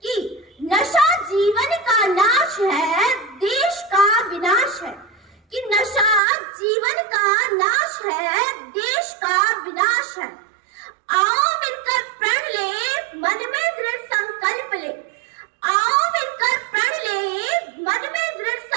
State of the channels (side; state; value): left; drops out; at 6.2 s